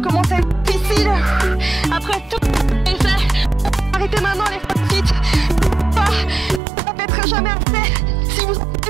à être difficile. Après tout est fait, arrêtez maintenant les feet. Ça ne pètera jamais assez. Si vous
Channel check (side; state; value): left; drops out; at 6.6 s